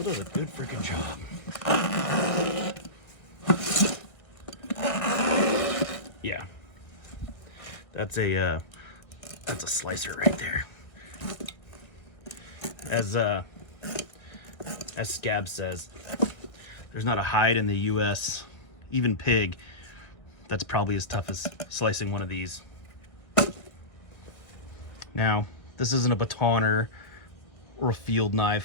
does a good freaking job. Yeah, that's a slicer right there. As Scab says, there's not a hide in the U.S., even pig, that's probably as tough as slicing one of these. Now, this isn't a batoner or a field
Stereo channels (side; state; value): right; late; 1.3 ms